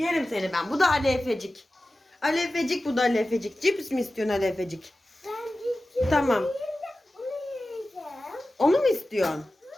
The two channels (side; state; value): both; normal; correlation 0.95